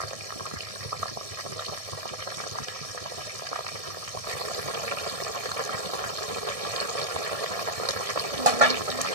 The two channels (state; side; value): late; left; 1.6 ms